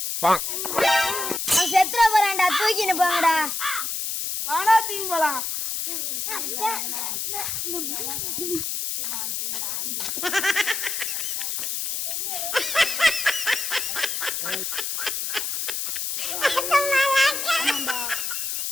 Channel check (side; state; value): left; noise; hiss, 2 dB below the sound